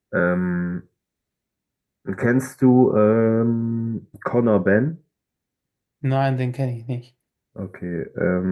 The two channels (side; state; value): both; identical; correlation 1.00